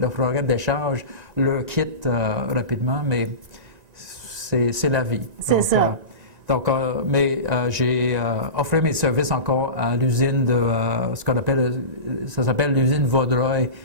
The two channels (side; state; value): left; late; 1.9 ms